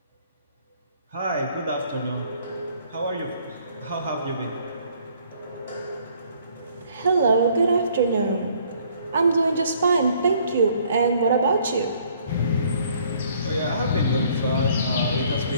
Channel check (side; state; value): both; inverted; correlation -0.61